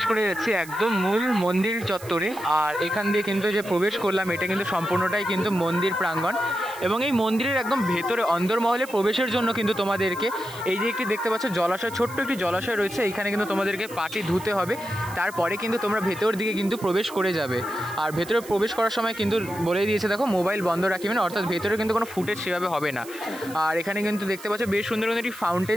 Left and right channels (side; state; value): right; noise; hiss, 17 dB below the sound